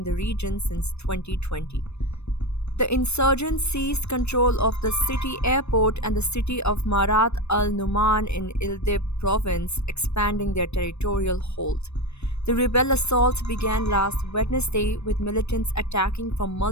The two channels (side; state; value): right; late; 0.81 ms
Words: the region since 2020. The insurgents seized control of the city airport and the city of Marat al-Numan in Idlib province, expanding their territorial hold. The rebel assault began last Wednesday with militants attacking from